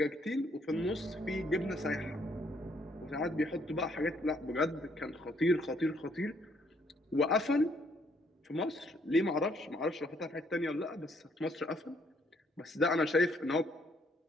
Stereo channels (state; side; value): normal; both; correlation 0.68